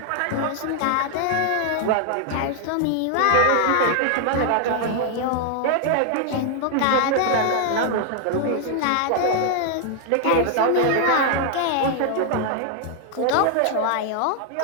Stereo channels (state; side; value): different; both; correlation 0.00